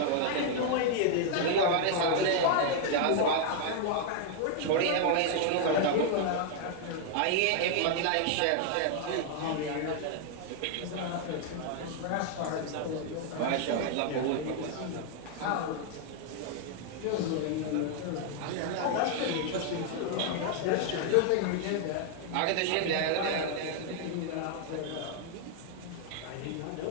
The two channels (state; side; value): different; both; correlation 0.00